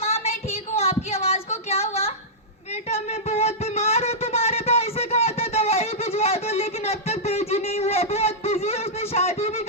मैं ठीक हूँ, आपकी आवाज को क्या हुआ? बेटा मैं बहुत बीमार हूँ, तुम्हारे भाई से कहा था दवाई भिजवा दो, लेकिन अब तक भेजी नहीं हुआ। बहुत बिजी है, उसने शादी भी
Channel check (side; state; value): both; normal; correlation -0.12